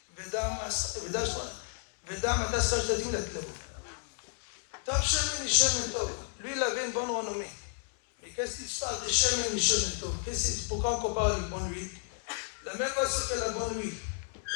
ודם אתה שכר שתתאים לתלבו. טוב שמן משמן טוב. Lui, il avait une bonne renommée. Mais qu'est-ce qui se passe de chemin משמן טוב? Pourquoi on compare avec bonne huile? La même façon que la bonne huile,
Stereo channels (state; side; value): silent; right; 56 dB below the other